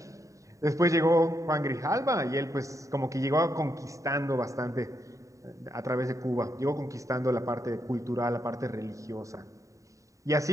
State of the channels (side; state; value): left; late; 0.16 ms